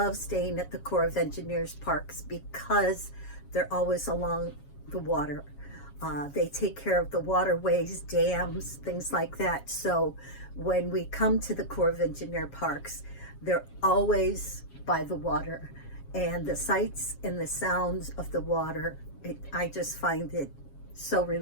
staying at the Corps of Engineers parks because they're always along the water. They take care of the waterways, dams, things like that. So when we come to the Corps of Engineer parks, they're always by the water. And the sights and the sounds of the water, I just find it so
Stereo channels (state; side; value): late; right; 7.3 ms